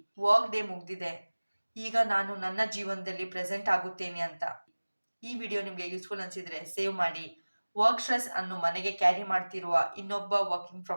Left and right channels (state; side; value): inverted; both; correlation -1.00